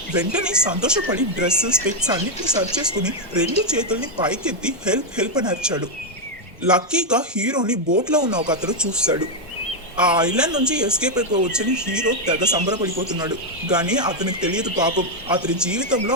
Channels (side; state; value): both; normal; correlation 0.01